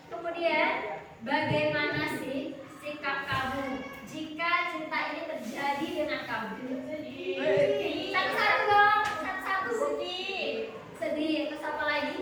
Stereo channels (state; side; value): identical; both; correlation 1.00